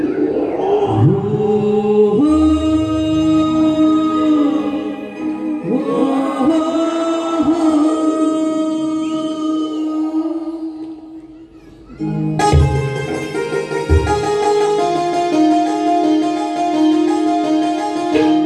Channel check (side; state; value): both; identical; correlation 1.00